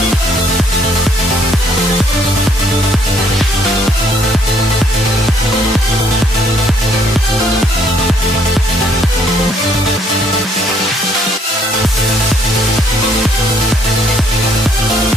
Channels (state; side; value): normal; both; correlation 0.66